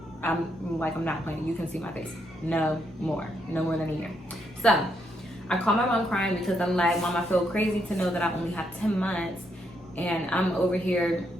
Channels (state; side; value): normal; both; correlation 0.77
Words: I'm not playing. You can see my face. No more than a year. So I called my mom crying because I'm like, Mom, I feel crazy to know that I only have 10 months and I'm over here